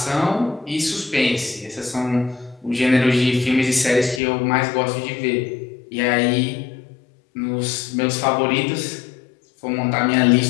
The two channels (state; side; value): drops out; right; at 4.2 s